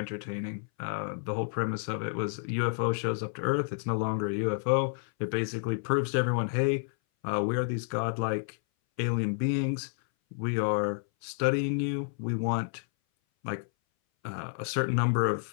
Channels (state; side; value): silent; right; 58 dB below the other